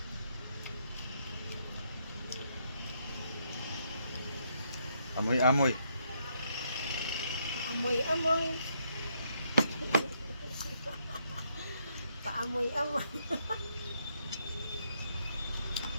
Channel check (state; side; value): inverted; both; correlation -0.75